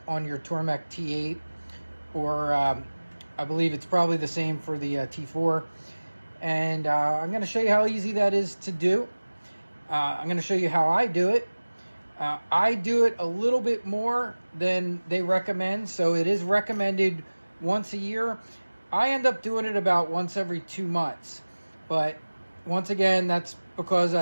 on your Tormek T8, or I believe it's probably the same for the T4. And I'm going to show you how easy that is to do. I'm going to show you how I do it. I do it a little bit more than they recommend, so it is recommended once a year. I end up doing it about once every 2 months, but once again, that's because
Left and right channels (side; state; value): both; inverted; correlation -1.00